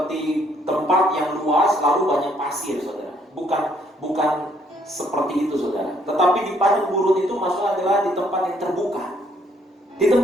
tempat yang luas lalu banyak pasir, saudara. Bukan seperti itu, saudara. Tetapi di padang gurun itu maksudnya adalah di tempat yang terbuka. Di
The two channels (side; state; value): both; normal; correlation 0.67